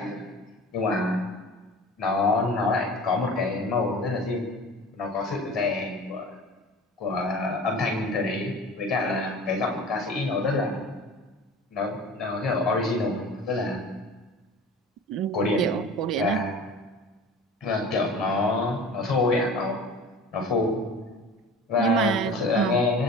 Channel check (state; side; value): normal; both; correlation 0.39